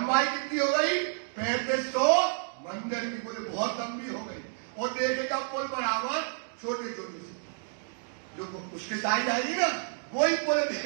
कितनी हो गई 3500 मंदिर की। बोले बहुत लंबी हो गई, और देखेगा पुल बराबर छोटे छोटे से, जो उसके साइड आएगी ना वही पुल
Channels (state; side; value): silent; left; 58 dB below the other